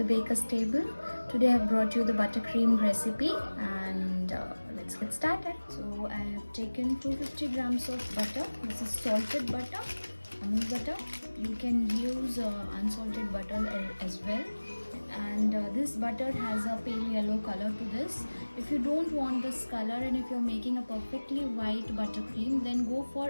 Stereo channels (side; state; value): both; inverted; correlation -1.00